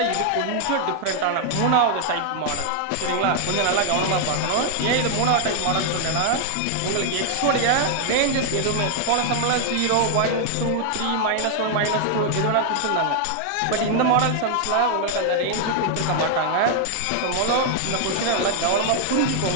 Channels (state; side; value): different; both; correlation 0.00